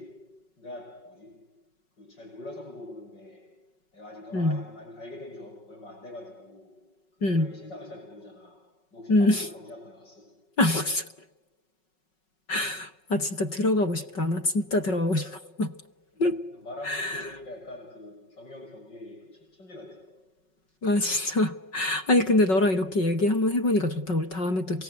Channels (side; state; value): right; late; 5.4 ms